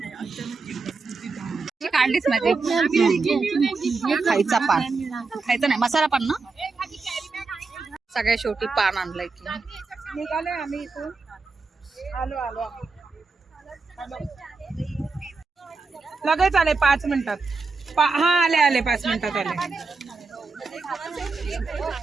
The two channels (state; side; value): quieter; left; 4.2 dB